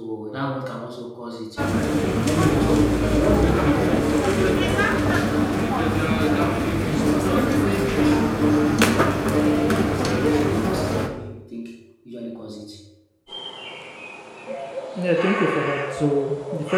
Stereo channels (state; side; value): identical; both; correlation 1.00